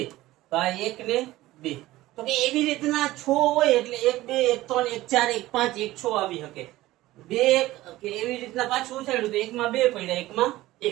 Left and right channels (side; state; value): left; quieter; 16.9 dB